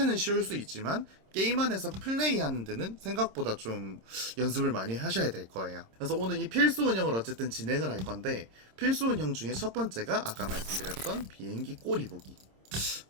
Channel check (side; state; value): left; late; 26 ms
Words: 쉬울 수 있지만 게임 안에서 플레이하는 데는 생각보다 좀 연습을 많이 하셔야 될 거예요. 그래서 오늘 이 필수 운영을 어쨌든 진행을 할 건데, 필수 운영 중에 첫 번째가 아까 말씀드렸던 비행기 꼬리 보기.